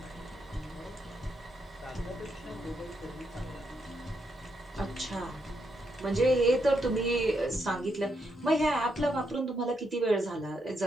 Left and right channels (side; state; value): both; normal; correlation 0.79